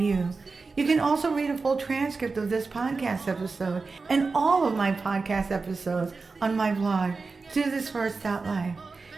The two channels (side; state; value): left; quieter; 4.2 dB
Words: You can also read a full transcript of this podcast episode and all of my podcast episodes on my blog, DoThisFirst.life.